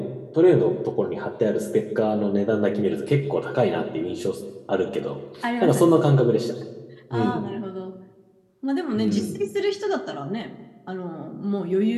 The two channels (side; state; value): both; identical; correlation 1.00